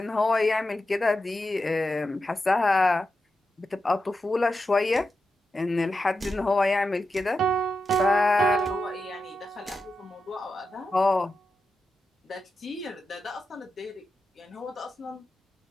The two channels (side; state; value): both; normal; correlation 0.89